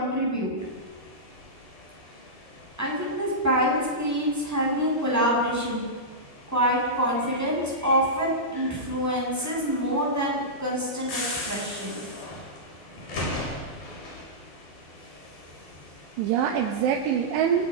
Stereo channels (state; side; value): normal; both; correlation -0.15